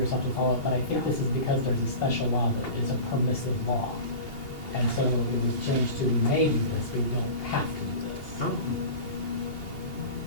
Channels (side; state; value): right; late; 2.8 ms